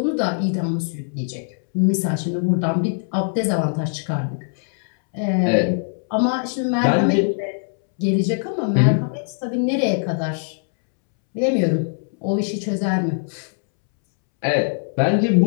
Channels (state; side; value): silent; right; 65 dB below the other